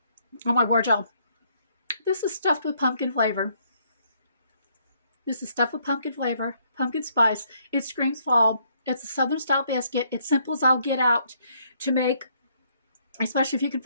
Oh my word, y'all. This is stuffed with pumpkin flavor. This is stuffed with pumpkin flavor, pumpkin spice. It screams fall. It's a Southern style biscuit. It's simple as I'll get out to make, especially if you can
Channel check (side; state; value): both; inverted; correlation -0.69